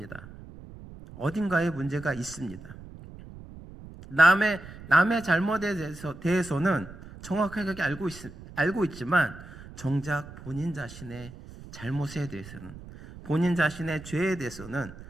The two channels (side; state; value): right; noise; rumble, 16 dB below the sound